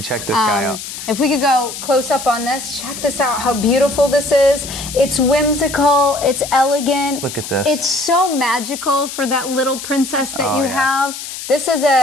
check this guy out. If we could go close up on this, check this out, how beautiful this is. It's whimsical, it's elegant. Look at this. It's so magical for that little princess that Oh, you yeah. have. This is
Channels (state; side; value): noise; left; hiss, 9 dB below the sound